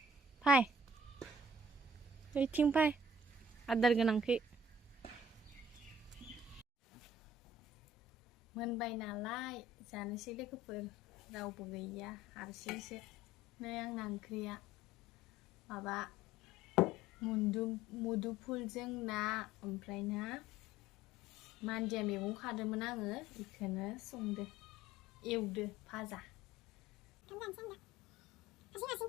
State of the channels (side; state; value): both; normal; correlation 0.52